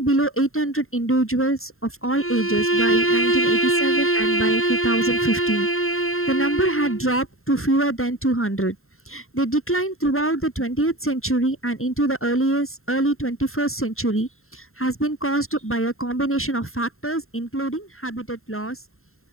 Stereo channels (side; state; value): right; late; 0.61 ms